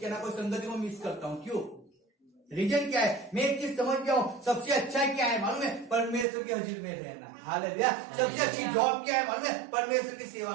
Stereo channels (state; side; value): drops out; left; at 6.2 s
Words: ना कोई संगति को मिस करता हूँ। क्यों? रीजन क्या है? मैं एक चीज समझ गया हूँ, सबसे अच्छा क्या है मालूम है? परमेश्वर के हजूर में रहना। हालेलुया। सबसे अच्छी जॉब क्या है मालूम है? परमेश्वर की सेवा